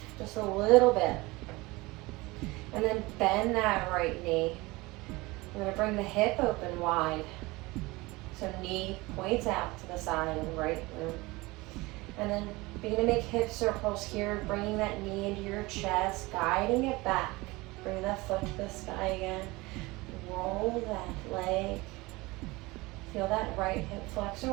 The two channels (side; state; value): left; quieter; 22.2 dB